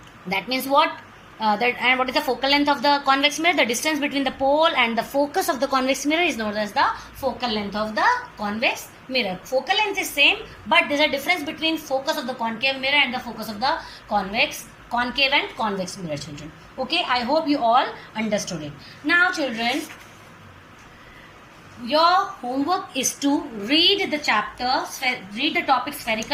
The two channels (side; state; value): both; identical; correlation 1.00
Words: that means what? And what is the focal length of the convex mirror? The distance between the pole and the focus of the convex mirror is known as the focal length of the convex mirror. Focal length is same, but there is a difference between focus of the concave mirror and the focus of the concave and convex mirror, children. Okay, I hope you all understood it. Now, children, your homework is to read the chapter, read the topic